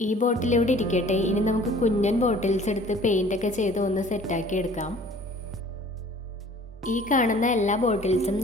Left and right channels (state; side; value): normal; both; correlation 0.50